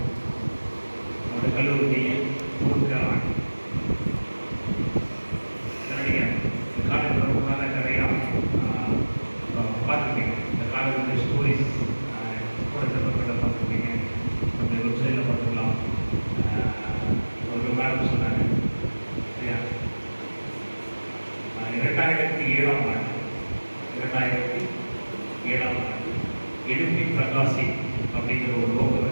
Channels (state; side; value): inverted; both; correlation -1.00